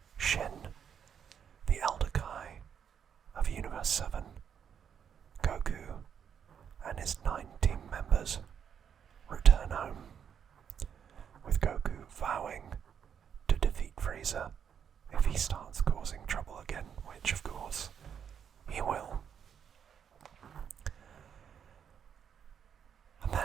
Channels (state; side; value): quieter; left; 7.9 dB